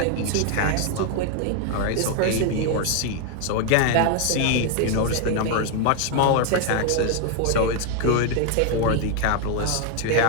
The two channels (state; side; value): different; both; correlation 0.01